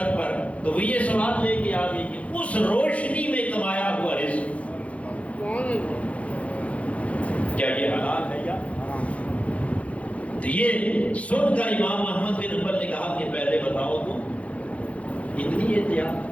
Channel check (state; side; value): late; right; 0.064 ms